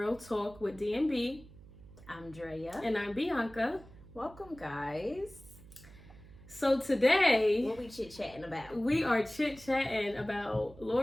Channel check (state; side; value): noise; right; hum, 20 dB below the sound